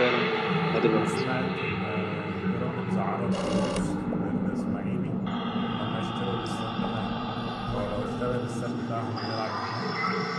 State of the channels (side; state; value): both; identical; correlation 1.00